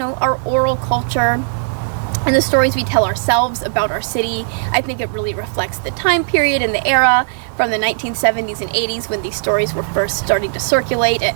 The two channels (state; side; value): silent; left; digital silence